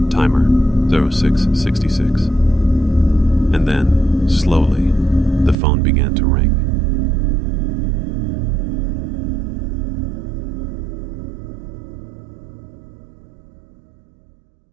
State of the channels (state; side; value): drops out; left; at 5.6 s